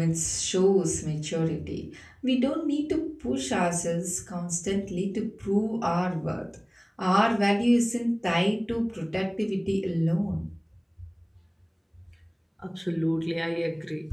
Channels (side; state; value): both; identical; correlation 1.00